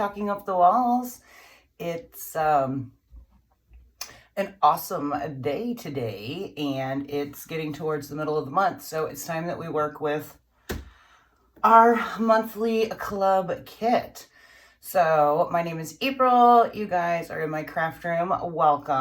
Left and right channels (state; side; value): identical; both; correlation 1.00